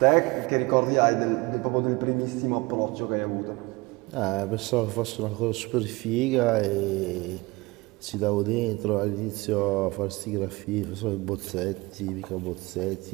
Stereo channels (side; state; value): left; quieter; 23.3 dB